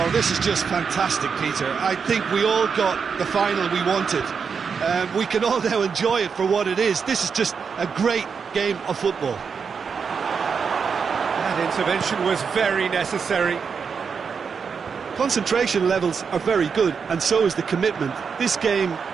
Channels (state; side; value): quieter; left; 6.0 dB